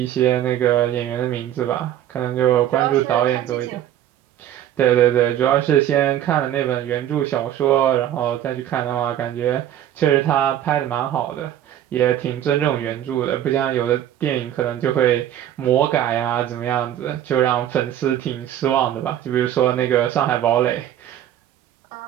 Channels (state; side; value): quieter; left; 11.3 dB